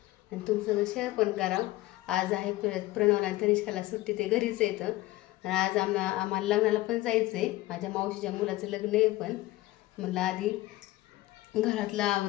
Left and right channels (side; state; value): right; quieter; 17.7 dB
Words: आणि तुमचं शेअर पण करावं। आज आहे प्रणवला तनिष्काला सुट्टी, ते घरीच येतं आणि आज आम्हाला लग्नाला पण जायचंय। माझ्या मावशीच्या मुलाचं लग्न आहे, पण म्हणलं आधी घरातलं